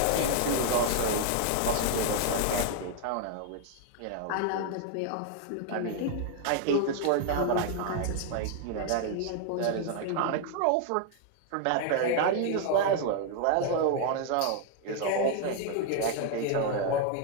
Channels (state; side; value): different; both; correlation 0.00